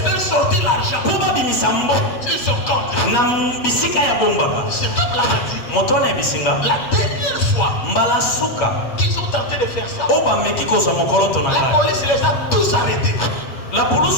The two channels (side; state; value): right; late; 8.3 ms